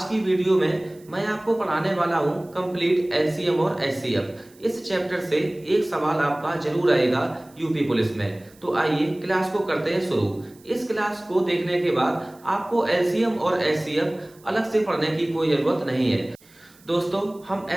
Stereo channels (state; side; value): noise; right; hiss, 28 dB below the sound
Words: की वीडियो में मैं आपको पढ़ाने वाला हूं कंप्लीट एलसीएम और एचसीएफ। इस चैप्टर से एक सवाल आपका जरूर आएगा यूपी पुलिस में। तो आइए क्लास को करते हैं शुरू। इस क्लास को देखने के बाद आपको एलसीएम और एचसीएफ अलग से पढ़ने की कोई जरूरत नहीं है। दोस्तों, हम